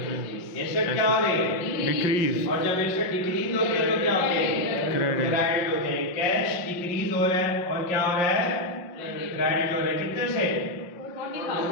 एसेट क्या हो रही है? डिक्रीज। और जब एसेट डिक्रीज होते हैं तो क्या होते हैं? क्रेडिट। क्रेडिट होते हैं। कैश डिक्रीज हो रहा है और क्या हो रहा है? क्रेडिट हो रहा है। कितने से?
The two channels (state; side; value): late; right; 5.7 ms